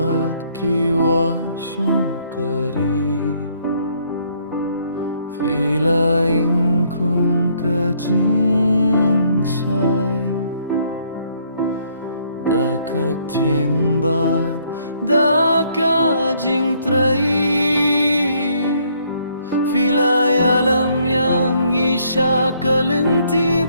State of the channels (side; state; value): both; inverted; correlation -0.68